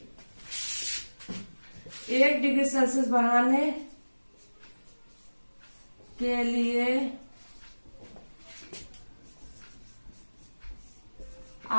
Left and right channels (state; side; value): inverted; both; correlation -1.00